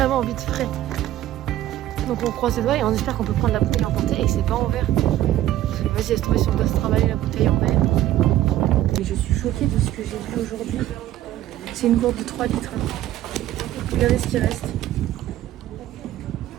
envie de frais. Donc on croise les doigts et on espère qu'on peut prendre la bouteille emportée et que c'est pas en verre. Vas-y, laisse tomber si on doit se travailler la bouteille en verre. Et je suis choquée de ce que j'ai vu aujourd'hui. C'est une gourde de 3 litres. Regardez ce qui reste.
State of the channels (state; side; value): quieter; left; 13.6 dB